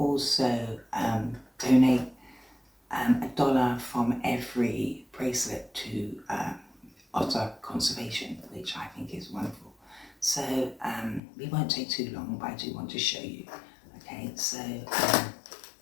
donate $1 from every bracelet to Otter Conservation, which I think is wonderful. So we won't take too long, but I do want to show you. Okay, so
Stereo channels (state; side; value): drops out; right; at 11.2 s